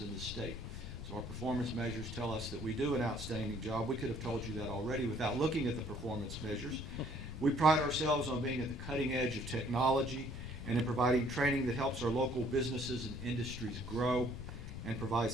in the state. So our performance measures tell us that we do an outstanding job. We could have told you that already without looking at the performance measures. We pride ourselves on being at the cutting edge of technology and in providing training that helps our local businesses and industries grow and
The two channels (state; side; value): noise; left; rumble, 10 dB below the sound